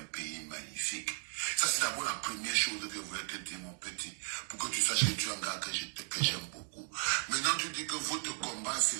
pays magnifique. Ça, c'est d'abord la première chose que je voulais te dire, mon petit, pour que tu saches que tu es un gars que j'aime beaucoup. Maintenant, tu dis que votre combat, c'est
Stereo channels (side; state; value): left; silent; 54 dB below the other